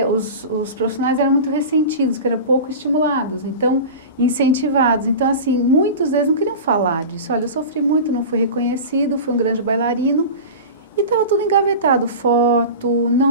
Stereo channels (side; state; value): both; inverted; correlation -0.31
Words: os profissionais eram muito ressentidos, que eram pouco estimulados, então, incentivados. Então, assim, muitos deles não queriam falar disso. Olha, eu sofri muito, não fui reconhecido, fui um grande bailarino, e estava tudo engavetado, foto,